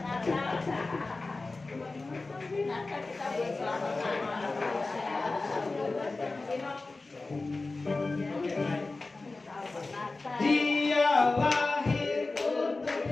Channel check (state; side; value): quieter; right; 3.5 dB